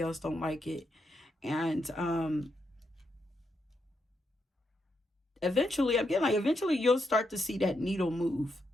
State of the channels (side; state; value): both; normal; correlation 0.81